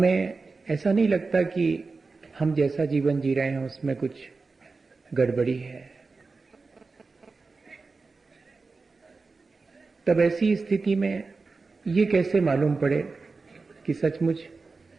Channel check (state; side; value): quieter; left; 4.1 dB